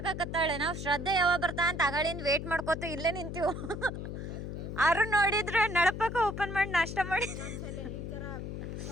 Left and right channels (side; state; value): left; noise; hum, 6 dB below the sound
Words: ನಾವು ಶ್ರದ್ಧೆ ಯಾವಾಗ ಬರ್ತಾ ಅಂತ ಅಗಳಿಂದ ವೇಟ್ ಮಾಡ್ಕೋತ ಇಲ್ಲೇ ನಿಂತೀವಿ. ಅರು ನೋಡಿದ್ರೆ ನಳಪಕ್ಕ ಓಪನ್ ಮಾಡಿ ನಾಷ್ಟ ಮಾಡಿ